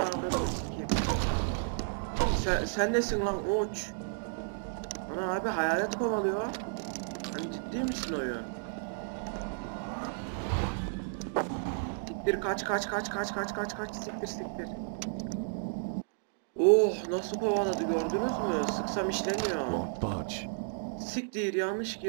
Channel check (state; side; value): silent; left; digital silence